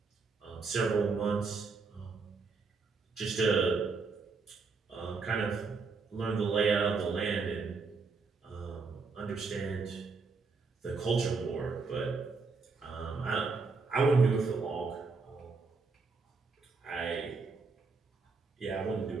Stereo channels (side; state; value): left; quieter; 4.5 dB